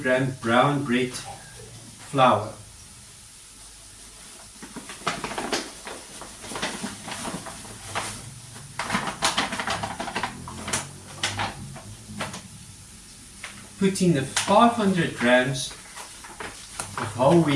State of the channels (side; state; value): both; identical; correlation 1.00